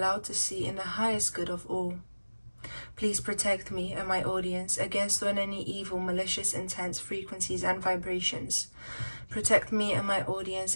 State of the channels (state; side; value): inverted; both; correlation -1.00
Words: to see in the highest good of all. Please protect me and my audience against any evil, malicious intents, frequencies and vibrations. Protect me and my audience